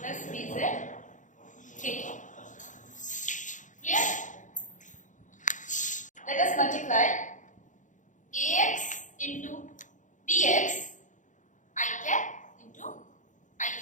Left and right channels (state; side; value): late; right; 0.36 ms